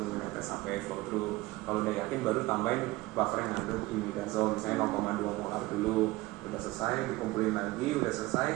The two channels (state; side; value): quieter; left; 20.0 dB